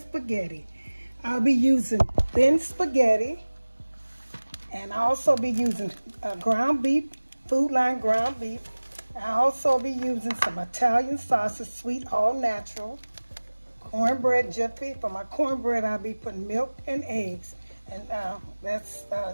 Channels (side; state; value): both; inverted; correlation -1.00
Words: I'll be using thin spaghetti, and I'll also be using ground beef, Food Line ground beef. I'll also be using some Italian sausage, sweet, all natural, cornbread Jiffy. For my cornbread, I'll be putting milk and eggs. And